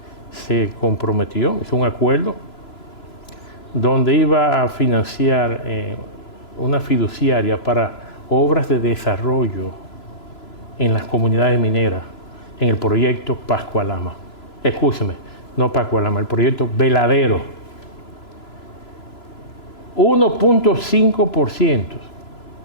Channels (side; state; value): right; late; 3.0 ms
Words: se comprometió, hizo un acuerdo donde iba a financiar una fiduciaria para obras de desarrollo en las comunidades mineras, en el proyecto Pascualama. Escúcheme, no Pascualama, el proyecto Veladero. 1.5%